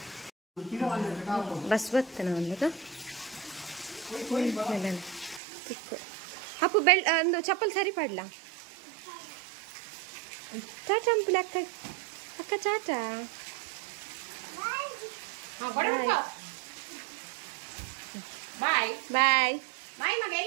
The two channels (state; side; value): drops out; left; at 5.4 s